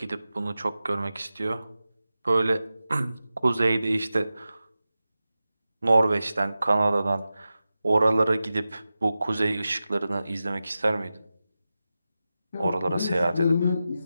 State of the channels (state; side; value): inverted; both; correlation -0.93